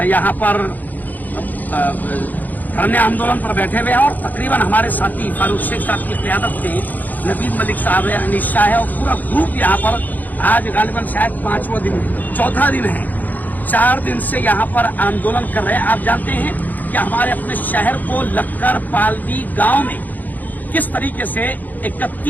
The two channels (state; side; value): late; right; 0.083 ms